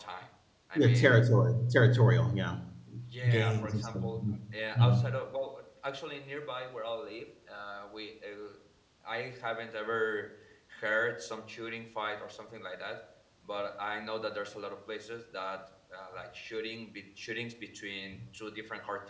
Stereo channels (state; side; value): identical; both; correlation 1.00